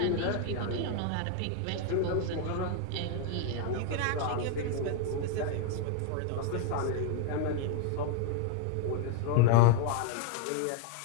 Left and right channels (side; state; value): both; different; correlation 0.00